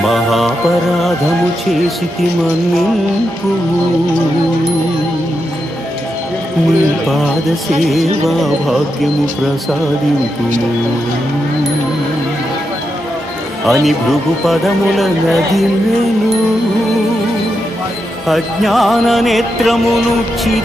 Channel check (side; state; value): both; normal; correlation 0.85